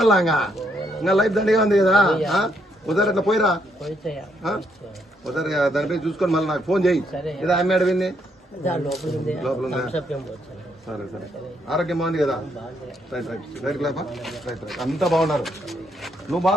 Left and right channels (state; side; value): normal; both; correlation 0.74